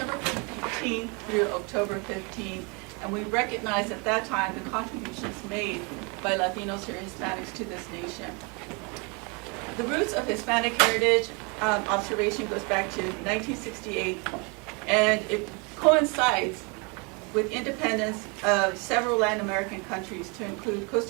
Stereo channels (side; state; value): left; quieter; 31.6 dB